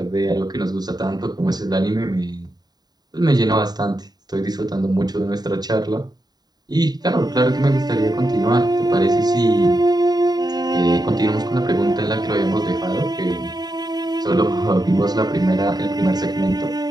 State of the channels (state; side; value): late; left; 0.20 ms